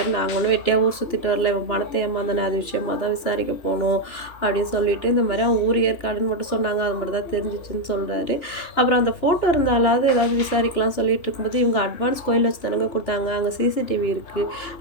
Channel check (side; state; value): right; late; 2.9 ms